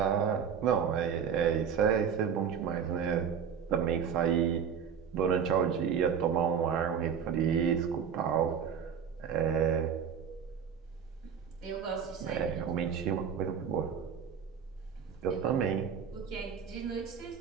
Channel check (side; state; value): left; quieter; 7.4 dB